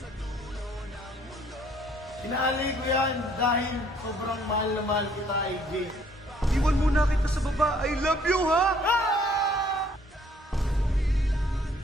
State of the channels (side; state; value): both; normal; correlation 0.62